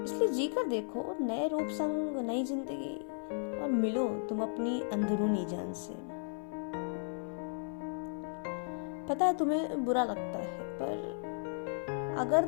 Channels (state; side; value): silent; right; 55 dB below the other